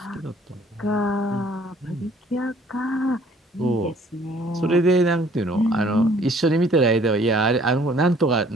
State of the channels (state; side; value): normal; both; correlation 0.58